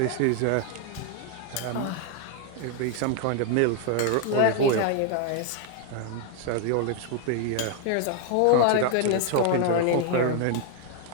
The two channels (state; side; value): different; both; correlation 0.00